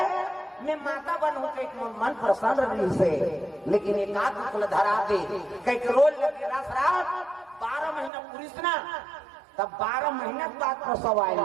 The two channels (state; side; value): drops out; left; at 8.1 s